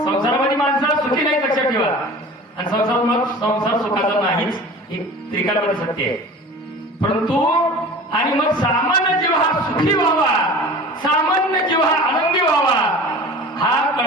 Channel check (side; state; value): both; normal; correlation 0.39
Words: संसारामध्ये माणसाला सुखी नाही लक्षात ठेवा. आणि संसार सुखाचा नाहीच एक त्रिकालमध्ये सत्य आहे. परंतु आणि मग सामान्य जीव हा सुखी व्हावा, सामान्य जीव हा आनंदी व्हावा हा